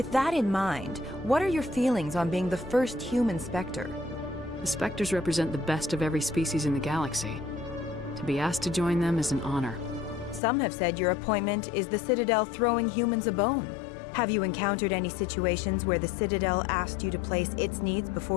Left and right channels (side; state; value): right; drops out; at 10.4 s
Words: that in mind, what are your feelings on being the first human Spectre? The Spectres represent the best of every species in the galaxy. To be asked to join them is an honor. Some have said your appointment is the Citadel throwing humans a bone. Have you encountered any situations where the Citadel asked you to place its needs